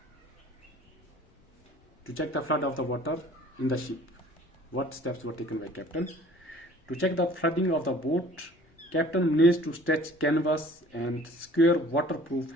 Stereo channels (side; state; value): both; normal; correlation 0.50